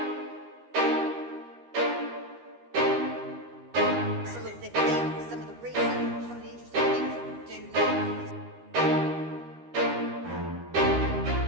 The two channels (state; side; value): late; left; 13 ms